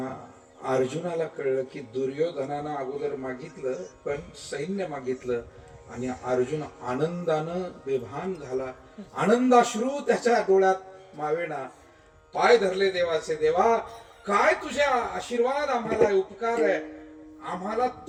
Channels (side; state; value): both; identical; correlation 1.00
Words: अर्जुनाला कळलं की दुर्योधनानं अगोदर मागितलं पण सैन्य मागितलं आणि अर्जुन आनंदानं बेभान झाला. आनंदाश्रू त्याच्या डोळ्यात मावेना. पाय धरले देवाचे. देवा, काय तुझ्या आशीर्वाद आम्हाला, उपकार आहे. आम्हाला